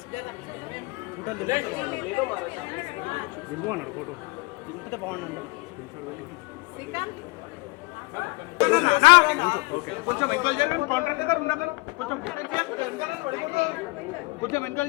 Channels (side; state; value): right; quieter; 25.6 dB